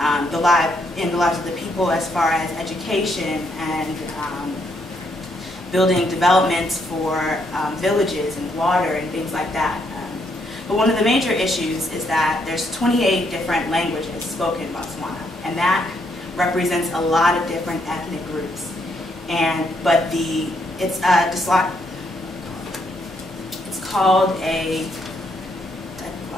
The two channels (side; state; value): both; normal; correlation 0.74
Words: the lives of the people as far as education and building developments for villages and water and things like that. But one of the major issues is that there's 28 different languages spoken in Botswana, and that represents a lot of different ethnic groups. But it's called a